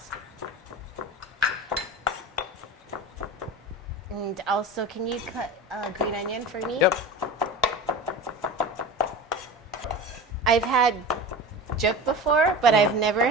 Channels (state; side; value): normal; both; correlation 0.31